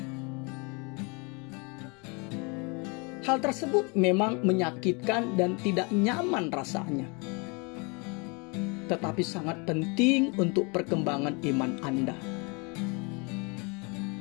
Hal tersebut memang menyakitkan dan tidak nyaman rasanya, tetapi sangat penting untuk perkembangan iman Anda.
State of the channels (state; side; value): quieter; right; 31.0 dB